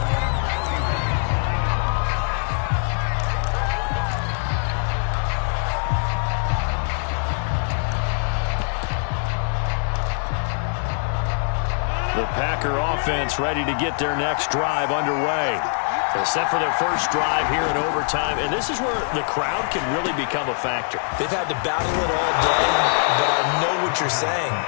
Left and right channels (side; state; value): right; silent; digital silence